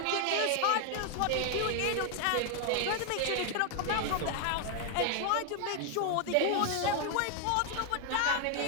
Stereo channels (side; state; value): both; different; correlation 0.00